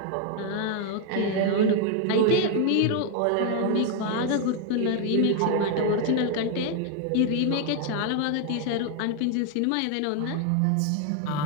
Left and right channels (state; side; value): different; both; correlation 0.00